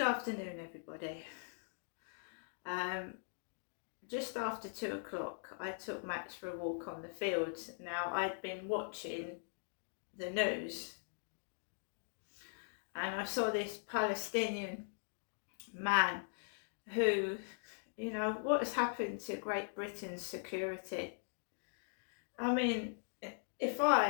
everybody. Just after 2 o'clock, I took Max for a walk on the fields. Now, I'd been watching the news and I saw this Palestinian man who, what has happened to Great Britain's security? I mean, if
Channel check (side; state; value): right; silent; digital silence